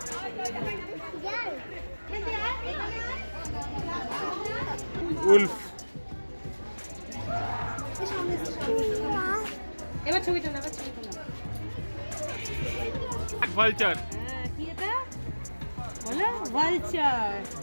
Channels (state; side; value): inverted; both; correlation -1.00